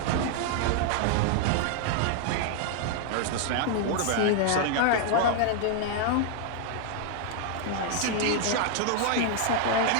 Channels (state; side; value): different; both; correlation 0.00